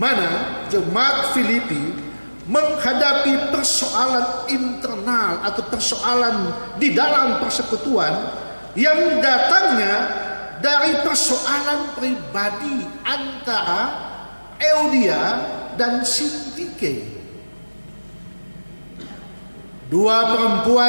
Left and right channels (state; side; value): inverted; both; correlation -1.00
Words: jemaat Filipi menghadapi persoalan internal atau persoalan di dalam persekutuan yang datangnya dari persoalan pribadi antara Euodia dan Sintike. Dua